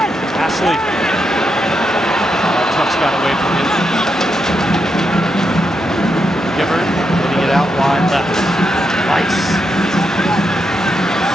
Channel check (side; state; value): both; normal; correlation 0.83